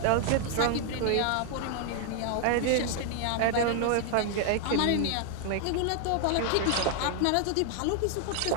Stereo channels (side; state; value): both; different; correlation 0.00